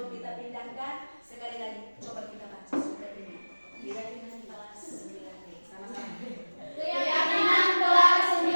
kita pindahkan, sekali lagi coba kita baca surat ini. Keyakinan kelas 9B. Sama-sama. Keyakinan kelas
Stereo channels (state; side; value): inverted; both; correlation -1.00